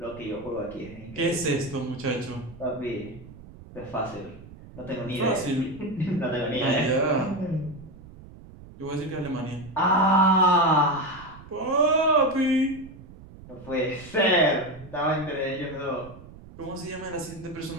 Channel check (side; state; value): right; noise; rumble, 18 dB below the sound